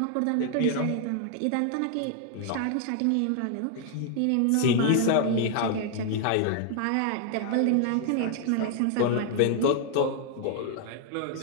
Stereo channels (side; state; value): both; different; correlation 0.00